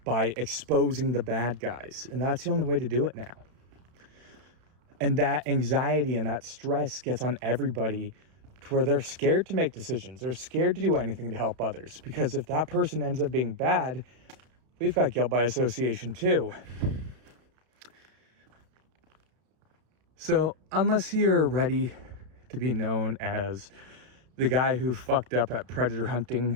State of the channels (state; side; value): late; left; 32 ms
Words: by exposing the bad guys. And that's the only way to do it now. And that anxiety and that stress gets on everybody to where they're scared to make decisions. They're scared to do anything to help others. Because if that person ends up being bad, we've got guilt by association too. So unless you're ready to be known as the guy who fucked up at predator